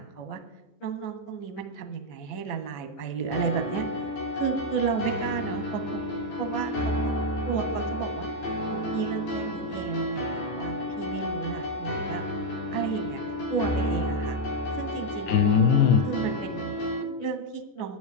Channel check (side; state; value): right; late; 14 ms